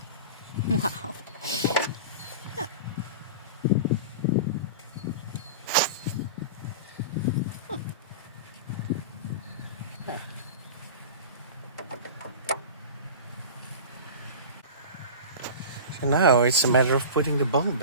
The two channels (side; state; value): both; inverted; correlation -0.32